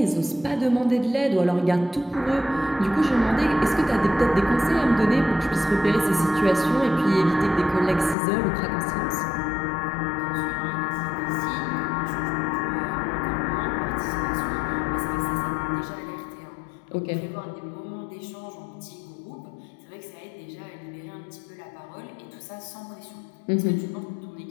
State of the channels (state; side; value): drops out; right; at 8.2 s